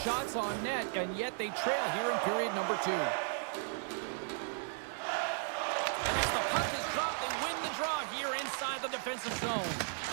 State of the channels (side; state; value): left; silent; 54 dB below the other